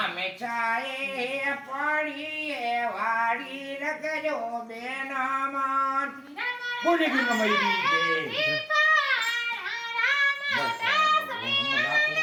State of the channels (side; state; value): both; identical; correlation 1.00